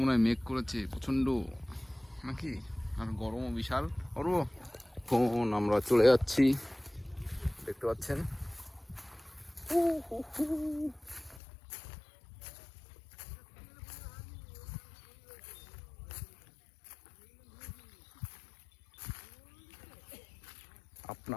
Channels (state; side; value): drops out; right; at 11.4 s